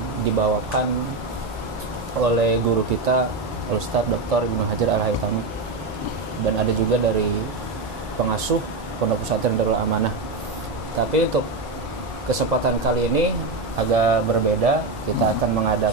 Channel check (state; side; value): quieter; left; 3.4 dB